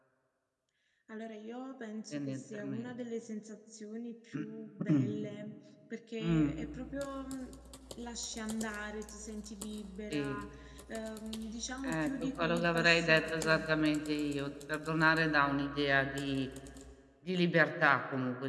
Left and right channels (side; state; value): both; identical; correlation 1.00